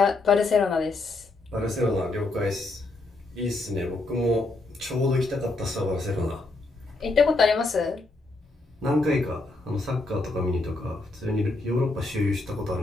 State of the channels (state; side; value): quieter; right; 3.2 dB